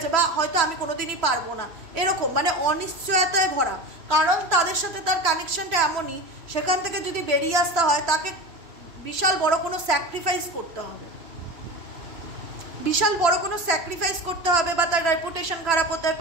বা হয়তো আমি কোনোদিনই পারবো না, এরকম মানে অনিশ্চয়তায় ভরা। কারণ তাদের সাথে তার কানেকশনটা এমনই, সেখান থেকে যদি বেরিয়ে আসতে হয় তাকে বিশাল বড় কোনো স্যাক্রিফাইস করতে হবে, বিশাল বড় কোনো স্যাক্রিফাইস করতে হবে, বা তার রেপুটেশন খারাপ হতে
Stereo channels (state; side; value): late; left; 3.0 ms